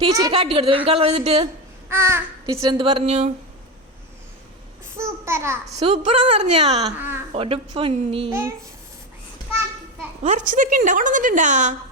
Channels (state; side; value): normal; both; correlation 0.16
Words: കാട്ടി കൊടുത്തു ബേബി കളർ ചെയ്തിട്ട്. ടീച്ചർ എന്ത് പറഞ്ഞു? സൂപ്പറാന്ന് പറഞ്ഞാ? ഒരു പൊന്നി വരച്ചതൊക്കെ ഉണ്ടാ കൊണ്ടുവന്നിട്ടുണ്ടാ?